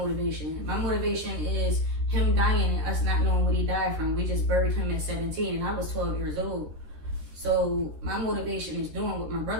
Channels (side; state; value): left; late; 13 ms